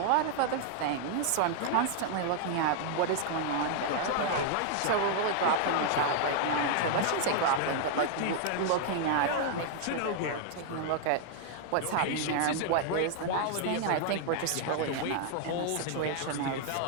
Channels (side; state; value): both; different; correlation 0.00